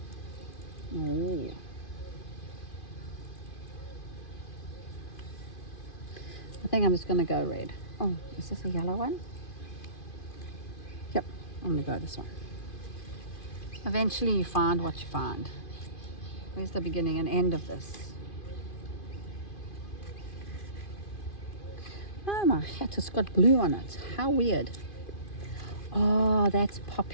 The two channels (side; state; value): right; late; 2.5 ms